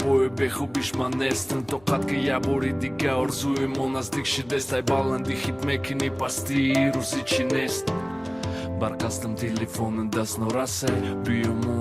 бехубиш ман нестам то қад ки як бори дига орзуи мо наздик шидест ай баланди хит мекини пасти рӯзи чӣ нест барқастам телефони даст норасай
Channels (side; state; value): left; noise; hum, 27 dB below the sound